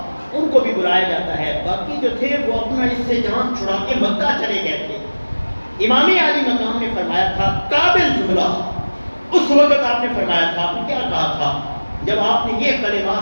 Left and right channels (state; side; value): inverted; both; correlation -1.00